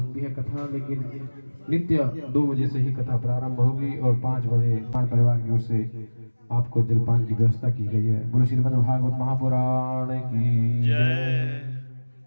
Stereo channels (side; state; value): both; inverted; correlation -1.00